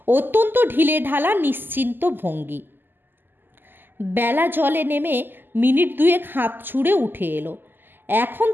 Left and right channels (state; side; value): late; left; 0.093 ms